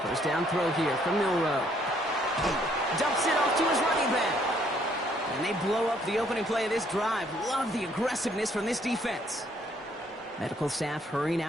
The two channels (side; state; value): both; normal; correlation 0.66